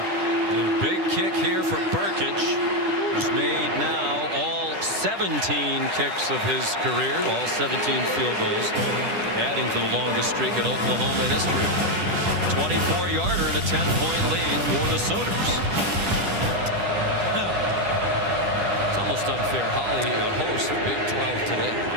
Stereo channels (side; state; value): left; late; 10 ms